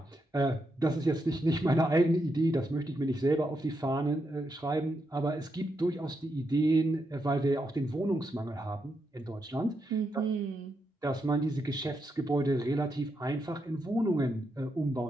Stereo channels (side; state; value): both; normal; correlation 0.82